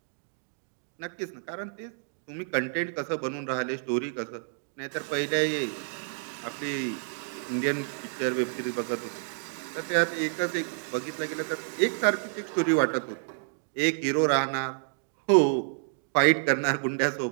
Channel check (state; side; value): silent; left; digital silence